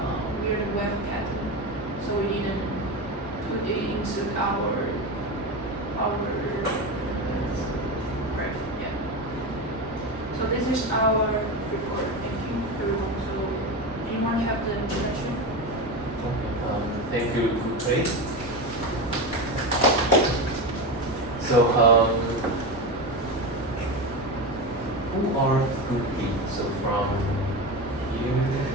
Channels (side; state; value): both; normal; correlation 0.20